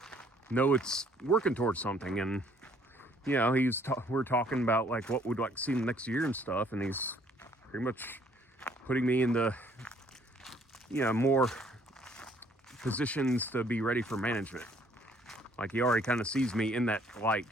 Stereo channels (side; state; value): both; normal; correlation 0.62